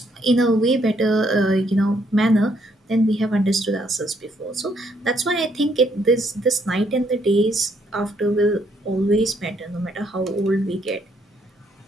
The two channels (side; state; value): both; normal; correlation 0.71